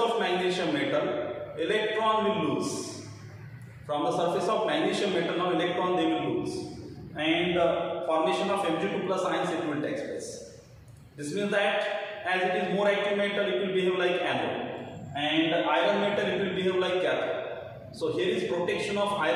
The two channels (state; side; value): identical; both; correlation 1.00